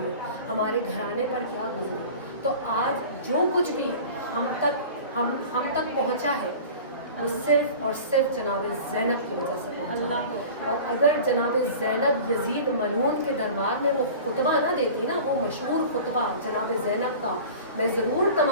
ہمارے گھرانے پر کیا گزری. تو آج جو کچھ بھی ہم تک پہنچا ہے وہ صرف اور صرف جناب زینب کی وجہ سے پہنچا ہے. اور اگر جناب زینب یزید ملعون کے دربار میں وہ خطبہ نہ دیتی نا، وہ مشہور خطبہ جناب زینب کا، میں ضرور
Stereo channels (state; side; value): inverted; both; correlation -0.39